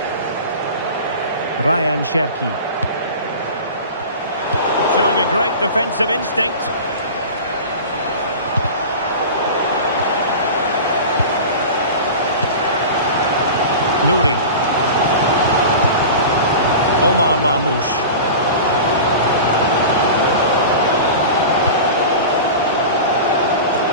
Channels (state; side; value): inverted; both; correlation -0.33